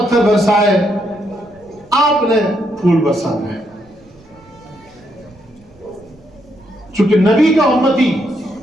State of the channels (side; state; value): right; noise; rumble, 29 dB below the sound